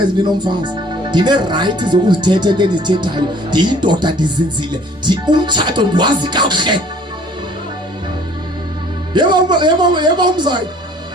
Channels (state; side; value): normal; both; correlation 0.55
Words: ndinomfazi. Ndine right zokuzithetha into endizithethayo. Ndiyindoda ndizinzile. Umtshato ndiwazi kakuhle. Yebo umzayi.